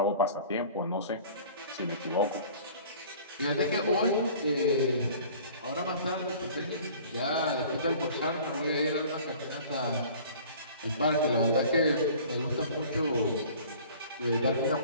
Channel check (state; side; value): inverted; both; correlation -0.47